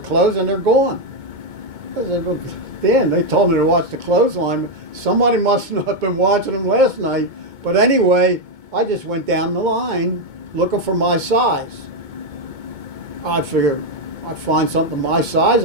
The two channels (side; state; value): left; late; 2.2 ms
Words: and they're gone. I said, well, Dan, they told me to watch the clothesline. Somebody must not have been watching them last night. But anyway, I just went down the line looking for my size. I figured I'd find something my size,